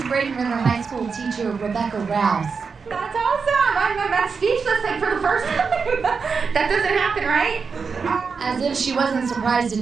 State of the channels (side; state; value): left; quieter; 5.3 dB